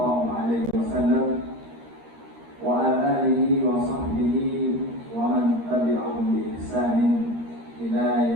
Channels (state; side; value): late; left; 13 ms